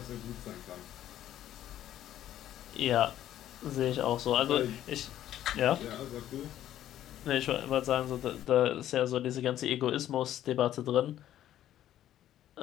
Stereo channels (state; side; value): quieter; right; 12.1 dB